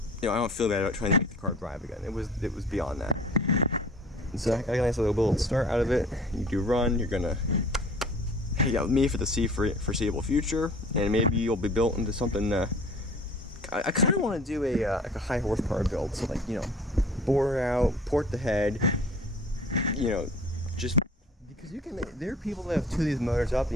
I don't feel bad about trying to make the car drive again. It was beyond that. And so I got a nice little start out of it. You do run, you're gonna hang out with me for the foreseeable future, and maybe you'll be built into something. I kind of want to do like a high horsepower build, so like, bore out, port the head, just because there are people that have two of these motors up,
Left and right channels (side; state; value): both; normal; correlation 0.47